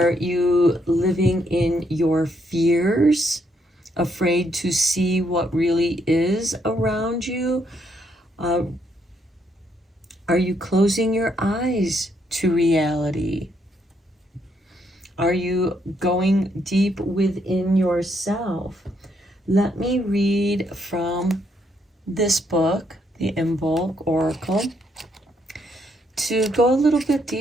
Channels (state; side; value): normal; both; correlation 0.74